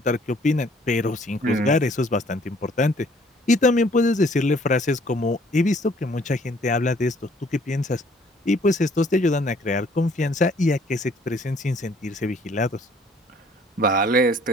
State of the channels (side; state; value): both; normal; correlation 0.59